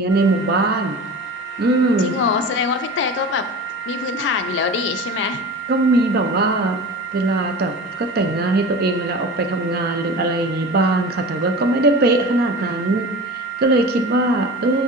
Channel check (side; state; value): both; normal; correlation 0.34